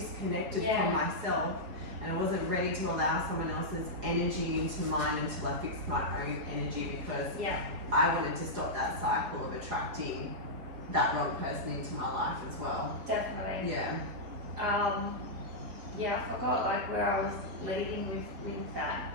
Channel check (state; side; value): late; left; 4.7 ms